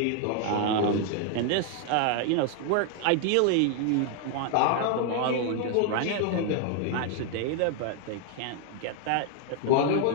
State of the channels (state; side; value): different; both; correlation 0.00